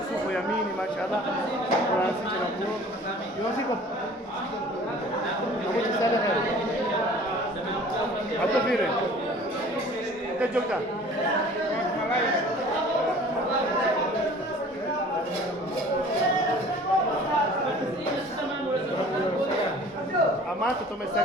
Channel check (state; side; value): normal; both; correlation 0.47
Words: supu ya mini mashallah. Francis na kuo. Yo siko. Kamu sana hai. Atau vile. Kita jogja. Amato